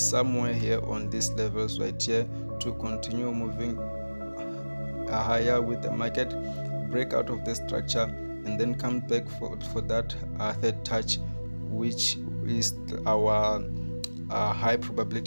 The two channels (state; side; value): inverted; both; correlation -1.00